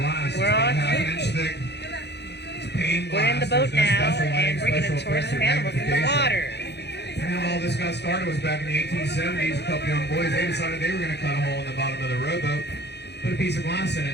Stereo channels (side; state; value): right; late; 0.49 ms